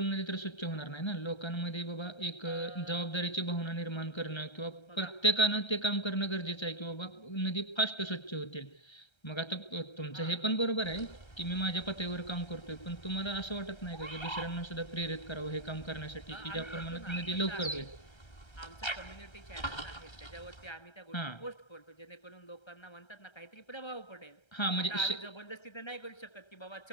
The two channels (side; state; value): right; late; 1.3 ms